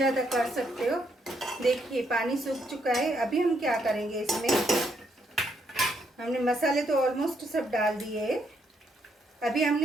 कर सकते हो। देखिए पानी सूख चुका है। अभी हम क्या करेंगे, इसमें हमने मसाले तो ऑलमोस्ट सब डाल दिए है। अभी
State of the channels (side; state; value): both; normal; correlation 0.75